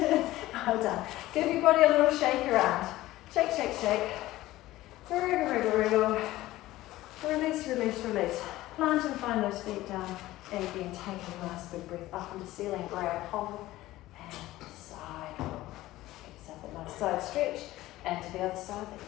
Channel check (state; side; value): quieter; right; 16.6 dB